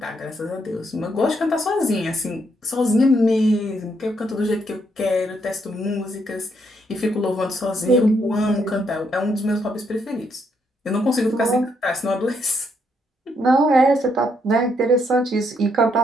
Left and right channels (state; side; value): normal; both; correlation 0.75